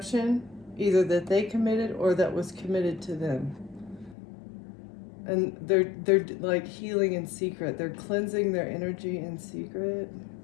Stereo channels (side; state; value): right; drops out; at 4.2 s